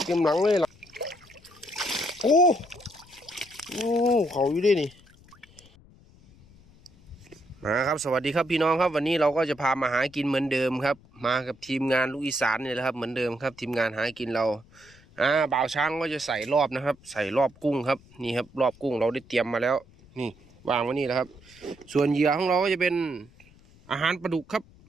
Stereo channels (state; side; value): noise; left; rumble, 26 dB below the sound